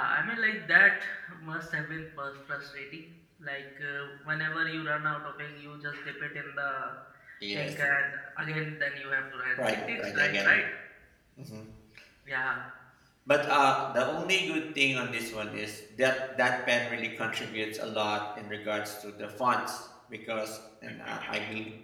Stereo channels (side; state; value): both; identical; correlation 1.00